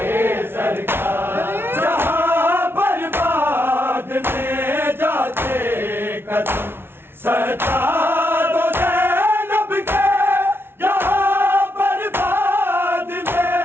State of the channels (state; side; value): late; left; 0.11 ms